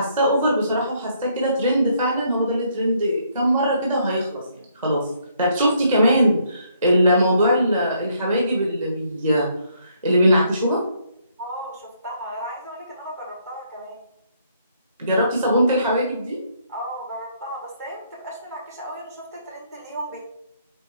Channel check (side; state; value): both; inverted; correlation -0.69